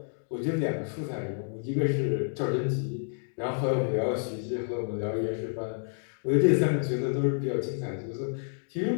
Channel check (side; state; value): right; silent; digital silence